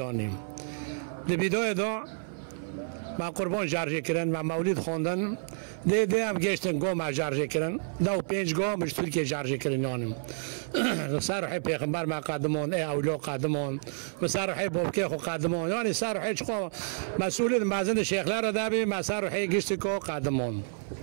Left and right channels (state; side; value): silent; left; 56 dB below the other